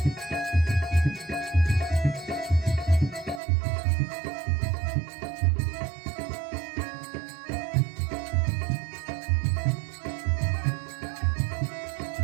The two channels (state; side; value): drops out; left; at 3.4 s